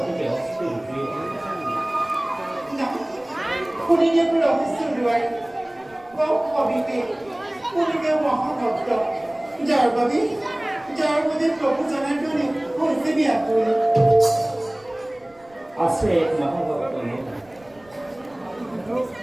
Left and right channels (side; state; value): right; noise; rumble, 29 dB below the sound